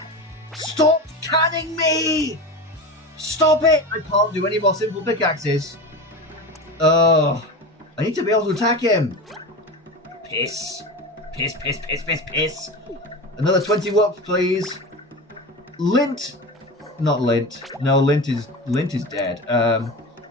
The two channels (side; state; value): both; normal; correlation 0.27